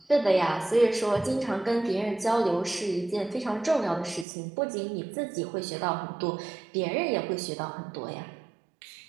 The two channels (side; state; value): left; drops out; at 4.2 s